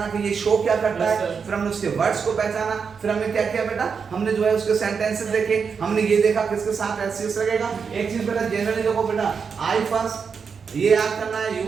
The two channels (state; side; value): quieter; left; 5.9 dB